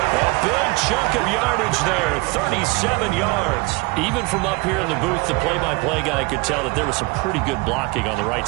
A big chunk of yardage there, 37 yards. Even from up here in the booth, the play-by-play guy could tell that there was some pretty good blocking on the right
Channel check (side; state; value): left; quieter; 25.7 dB